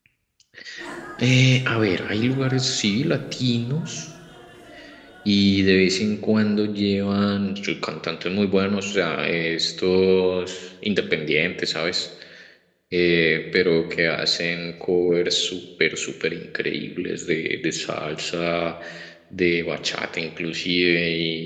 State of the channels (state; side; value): identical; both; correlation 1.00